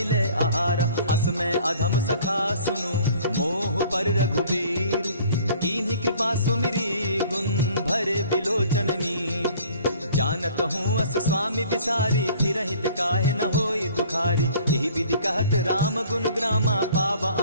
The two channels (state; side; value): inverted; both; correlation -0.52